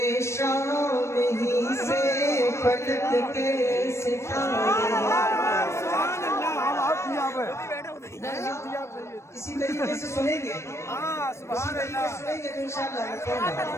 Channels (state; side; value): late; right; 0.13 ms